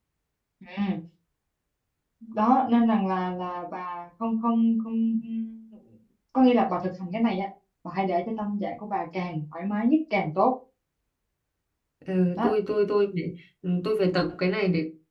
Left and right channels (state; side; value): identical; both; correlation 1.00